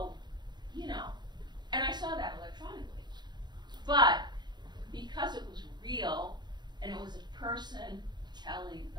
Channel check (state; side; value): late; left; 0.21 ms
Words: you know, and I saw that electronically. But because it was real, and it was a person telling